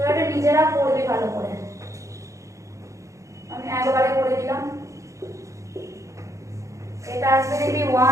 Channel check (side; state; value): left; late; 0.15 ms